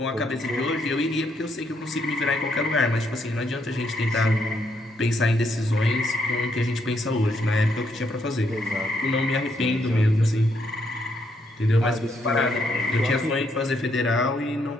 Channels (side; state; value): both; normal; correlation 0.75